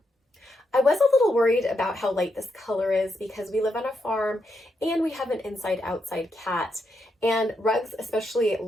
I was a little worried about how light this color is because we live on a farm and we have an inside-outside cat, and rugs, especially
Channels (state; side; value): normal; both; correlation 0.82